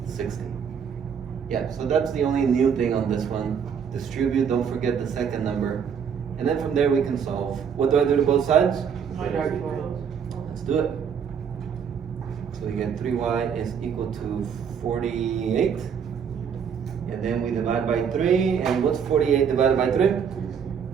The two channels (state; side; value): quieter; left; 7.3 dB